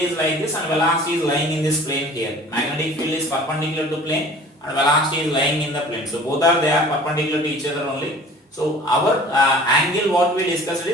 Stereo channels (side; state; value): both; normal; correlation 0.47